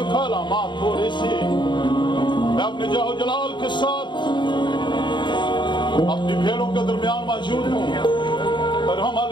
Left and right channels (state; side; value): late; right; 0.22 ms